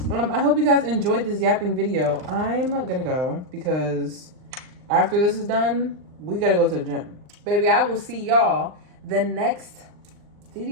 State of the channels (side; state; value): left; late; 39 ms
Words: I hope you guys enjoyed this yapping video. I'm gonna go because after this is done, we gotta go to the gym. Baby, I will see y'all the next